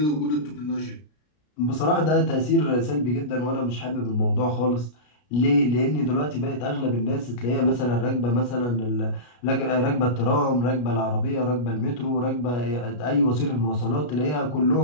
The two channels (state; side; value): late; right; 33 ms